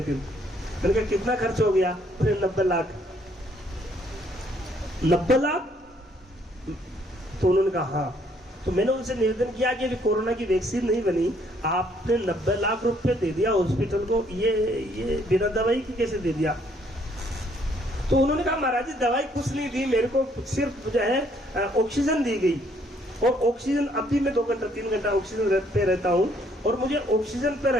दिन। मैंने कहा कितना खर्च हो गया। बोले 90 लाख। 90 लाख? तो उन्होंने कहा हाँ। तो मैंने उनसे निवेदन किया कि अभी कोरोना की वैक्सीन नहीं बनी, आपने 90 लाख रुपए दे दिया हॉस्पिटल को, ये बिना दवाई की कैसे दे दिया। तो उन्होंने कहा महाराज जी दवाई कुछ नहीं दी, मेरे को सिर्फ जो है ऑक्सीजन दी गई। और ऑक्सीजन अभी मैं 2 घंटा 3 घंटा ऑक्सीजन पे रहता हूँ और मुझे ऑक्सीजन पे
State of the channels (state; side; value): normal; both; correlation 0.66